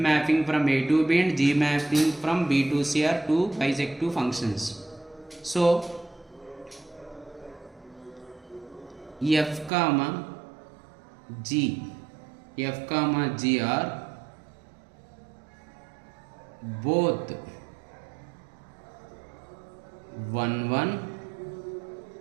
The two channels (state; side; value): drops out; left; at 9.7 s